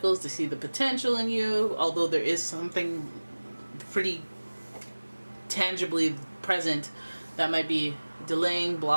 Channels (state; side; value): inverted; both; correlation -1.00